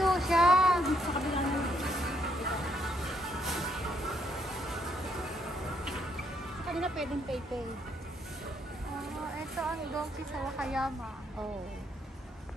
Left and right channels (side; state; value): both; normal; correlation 0.73